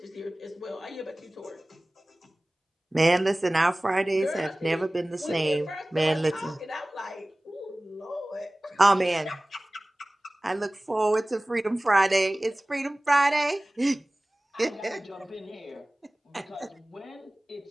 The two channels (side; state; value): both; normal; correlation 0.98